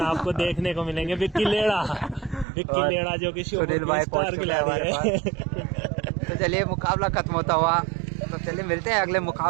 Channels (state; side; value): drops out; left; at 2.5 s